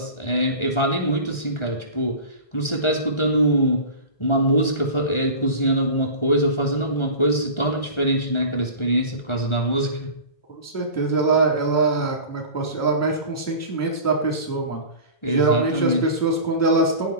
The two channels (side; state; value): right; late; 1.4 ms